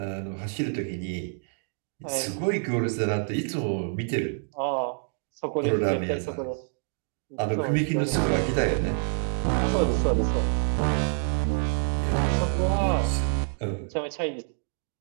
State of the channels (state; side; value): silent; left; 60 dB below the other